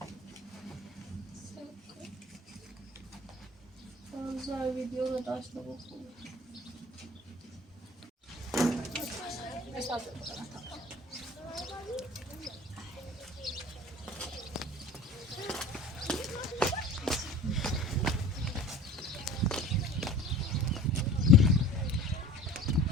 زای ویدیو رو داشته بود خوبه مرساده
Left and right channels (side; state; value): both; normal; correlation 0.43